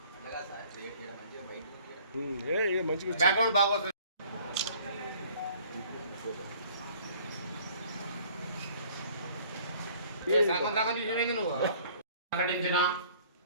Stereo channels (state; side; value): inverted; both; correlation -0.55